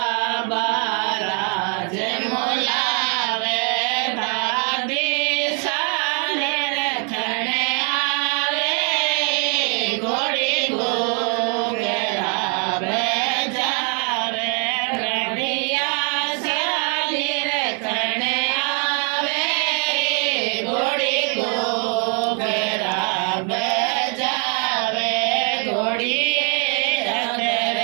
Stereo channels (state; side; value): quieter; left; 38.5 dB